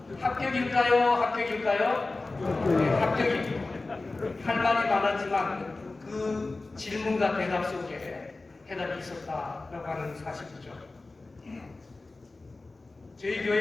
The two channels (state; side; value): quieter; right; 3.3 dB